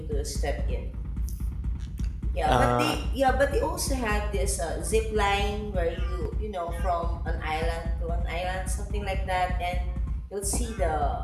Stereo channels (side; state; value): both; identical; correlation 1.00